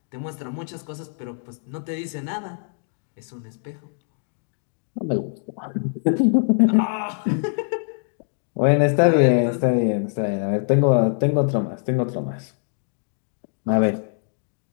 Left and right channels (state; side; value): silent; right; digital silence